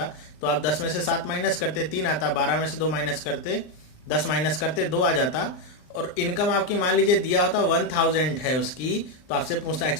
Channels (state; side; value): late; right; 39 ms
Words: तो आप 10 में से 7 माइनस करते 3 आता, 12 में से 2 माइनस करते 10 माइनस करते 2 आ जाता। और इनकम आपकी मान लीजिए दिया होता 1000 है उसकी, तो आपसे पूछता